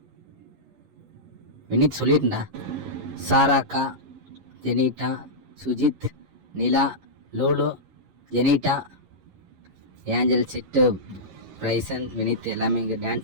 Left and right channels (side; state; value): left; late; 11 ms